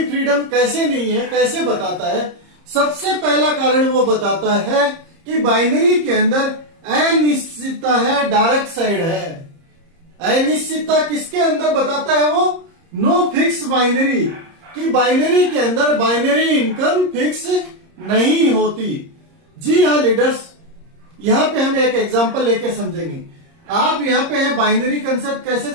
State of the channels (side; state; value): left; late; 30 ms